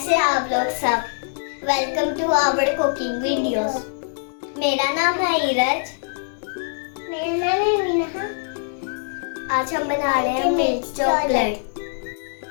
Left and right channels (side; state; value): right; silent; digital silence